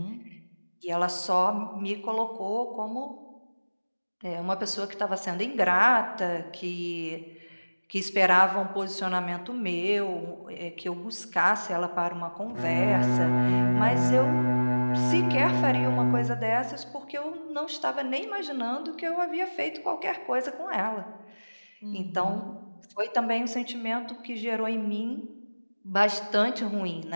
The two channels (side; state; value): both; inverted; correlation -1.00